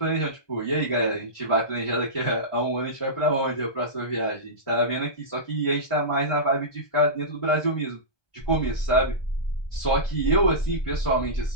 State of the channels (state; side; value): late; right; 1.2 ms